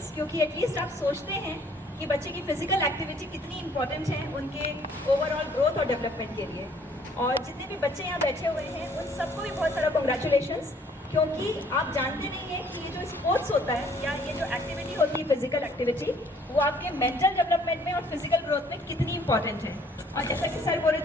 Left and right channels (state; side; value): normal; both; correlation 0.60